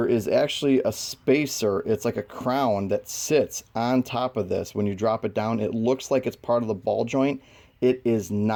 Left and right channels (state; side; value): identical; both; correlation 1.00